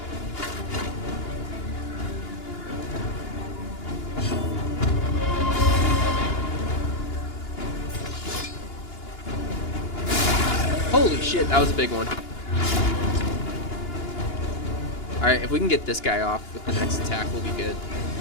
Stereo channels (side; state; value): right; late; 2.9 ms